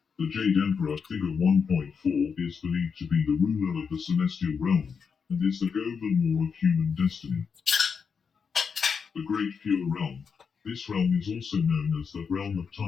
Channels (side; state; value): right; quieter; 6.0 dB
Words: The Jade Emperor. Figure 1.4 is believed to be the ruler of the celestial realm, and is the Governor of human destiny. The Great Pure Realm. This realm is also known as the realm of